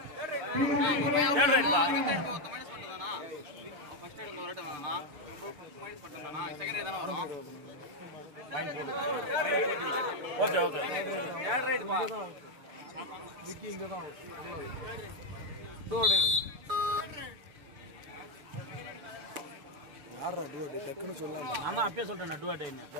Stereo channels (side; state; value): left; late; 6.7 ms